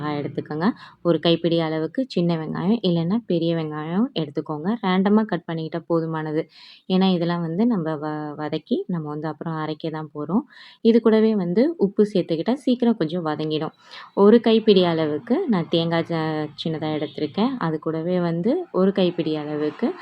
எடுத்துக்கோங்க. ஒரு கைப்பிடி அளவுக்கு சின்ன வெங்காயம் இல்லைன்னா பெரிய வெங்காயம் எடுத்துக்கோங்க. ரேண்டமாக கட் பண்ணிக்கிட்டால் போதுமானது. ஏன்னா இதெல்லாம் வந்து நம்ம வதக்கி நம்ம வந்து அப்புறம் அரைக்க தான் போகிறோம். இது கூடவே வந்து உப்பு சேர்த்துக்கிட்டா சீக்கிரம் கொஞ்சம் வதங்கிடும். ஒரு கைப்பிடி அளவுக்கு நான் தேங்காய் சின்னதா எடுத்திருக்கேன். அது கூடவே வந்து ஒரு கைப்பிடி அளவுக்கு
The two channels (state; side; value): identical; both; correlation 1.00